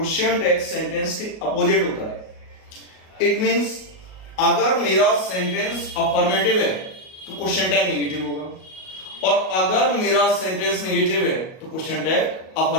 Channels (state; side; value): late; right; 38 ms